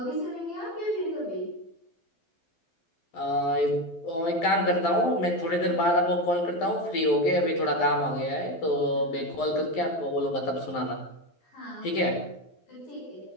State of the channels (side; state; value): right; late; 12 ms